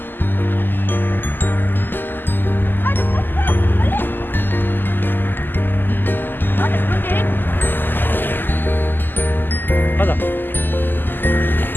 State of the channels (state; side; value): late; right; 0.092 ms